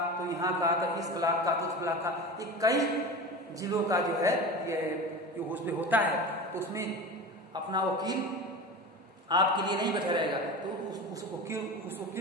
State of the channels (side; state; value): both; normal; correlation 0.30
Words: तो यहाँ का, तो इस ब्लॉक का, तो उस ब्लॉक का, ये कई जिलों का जो है ये उसमें होता है। तो उसमें अपना वकील आपके लिए नहीं बैठा रहेगा, तो उस